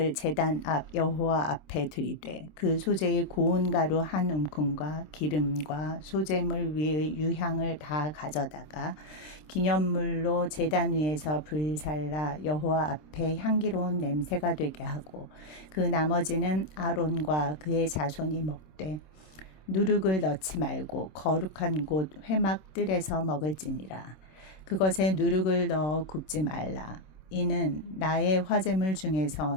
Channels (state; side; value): late; right; 26 ms